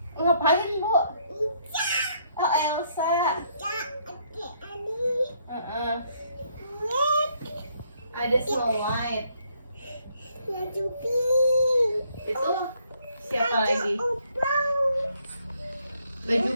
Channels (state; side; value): inverted; both; correlation -0.70